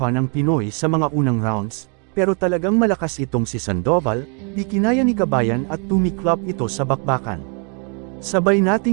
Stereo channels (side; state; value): left; quieter; 37.9 dB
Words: ang Pinoy sa mga unang rounds, pero talagang malakas itong si Sandoval, di kinaya ni Kabayan at tumiklop ito sa bakbakan. Sabay